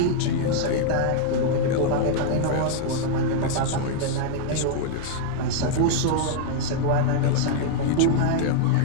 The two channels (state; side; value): different; both; correlation -0.01